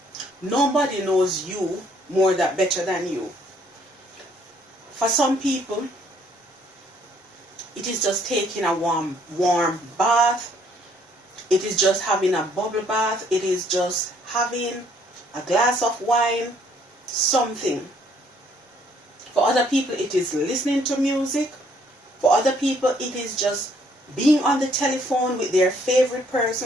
Nobody knows you better than you. For some people, it is just taking a warm bath. It is just having a bubble bath. It is just having a glass of wine, something. For other people, it is listening to music. For other people, it is just being on the telephone with their favorite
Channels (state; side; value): normal; both; correlation 0.65